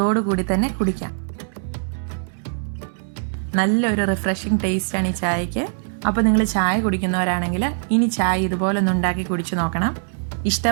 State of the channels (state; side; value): silent; left; 64 dB below the other